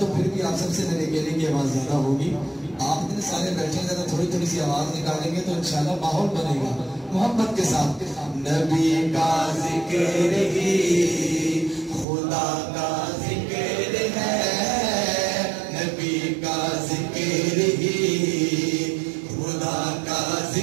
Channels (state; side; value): drops out; left; at 12.1 s